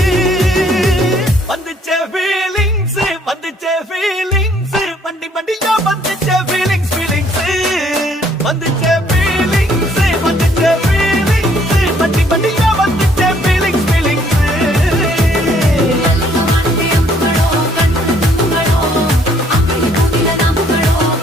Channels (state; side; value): normal; both; correlation 0.64